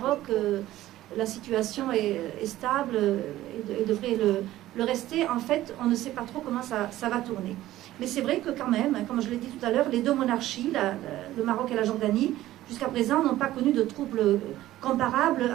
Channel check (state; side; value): quieter; left; 14.9 dB